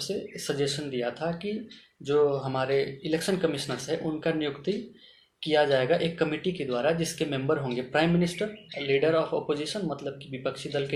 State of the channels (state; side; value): identical; both; correlation 1.00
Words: से सजेशन दिया था कि जो हमारे इलेक्शन कमिश्नर्स हैं उनका नियुक्ति किया जाएगा एक कमेटी के द्वारा, जिसके मेंबर होंगे prime minister, leader of opposition मतलब कि विपक्षी दल